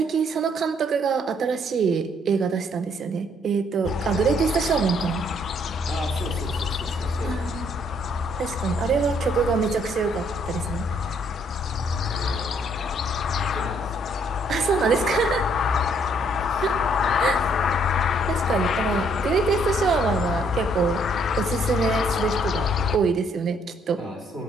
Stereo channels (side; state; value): both; normal; correlation 0.67